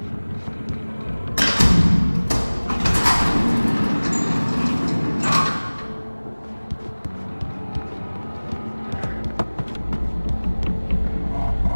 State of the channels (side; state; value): both; inverted; correlation -1.00